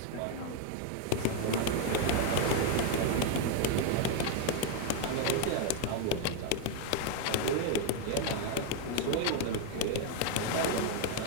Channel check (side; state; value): both; different; correlation 0.01